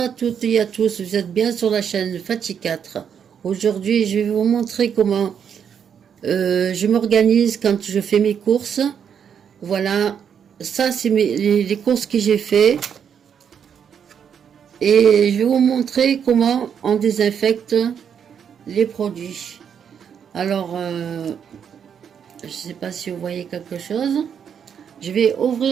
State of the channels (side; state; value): left; quieter; 7.8 dB